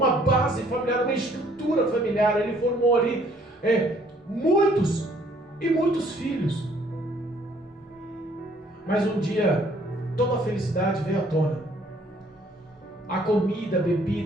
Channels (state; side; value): normal; both; correlation 0.62